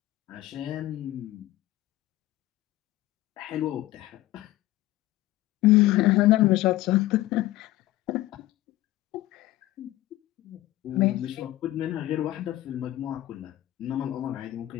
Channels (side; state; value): right; quieter; 16.1 dB